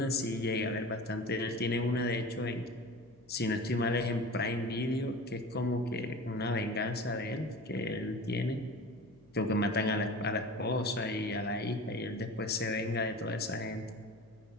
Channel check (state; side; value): noise; left; hum, 29 dB below the sound